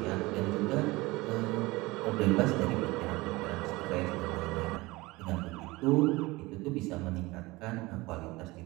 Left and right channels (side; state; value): left; quieter; 21.7 dB